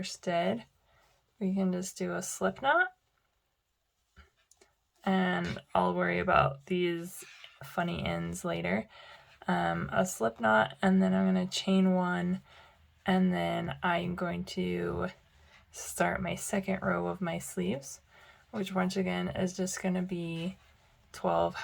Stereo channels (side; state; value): both; identical; correlation 1.00